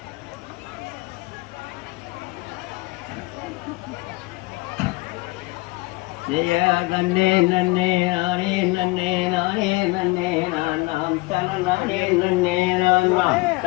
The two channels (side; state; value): right; quieter; 23.5 dB